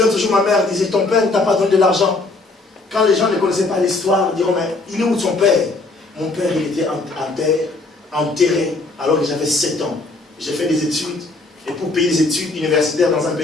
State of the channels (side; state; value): right; quieter; 3.3 dB